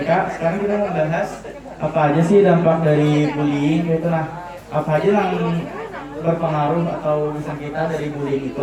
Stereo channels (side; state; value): both; identical; correlation 1.00